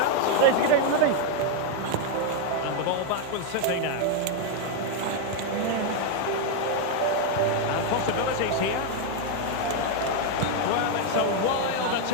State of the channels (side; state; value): both; different; correlation 0.00